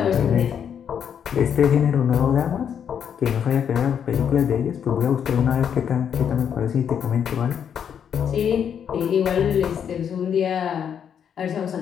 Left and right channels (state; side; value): quieter; right; 8.2 dB